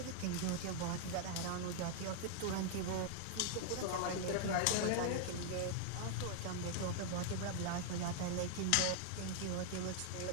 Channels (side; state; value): both; different; correlation -0.01